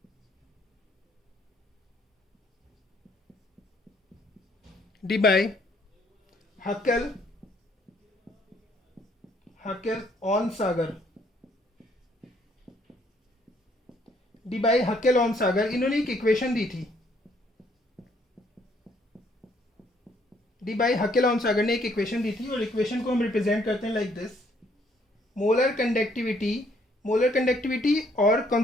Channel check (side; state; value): both; normal; correlation 0.66